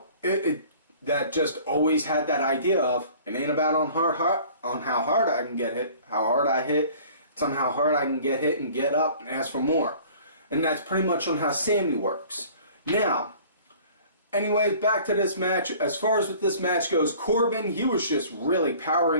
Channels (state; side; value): inverted; both; correlation -0.49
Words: That just always had that idea of, it ain't about on how hard I can get hit, how hard I hit. It's on how hard I can get hit and get up and ask for more. And that's pretty much on how Sami works. Now, anyways, back to this match. As far as what this match goes, Corbin, he was just really